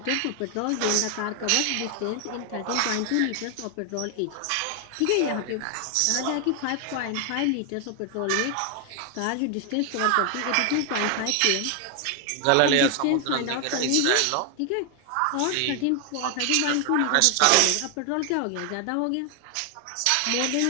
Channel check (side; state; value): both; different; correlation 0.00